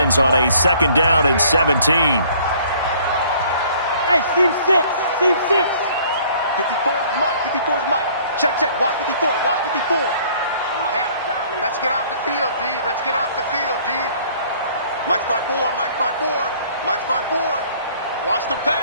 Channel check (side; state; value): both; inverted; correlation -0.56